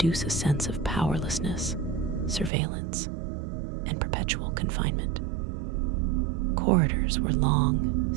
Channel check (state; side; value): drops out; left; at 2.5 s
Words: a sense of powerlessness, surveillance, and perpetual confinement. Corridors were long,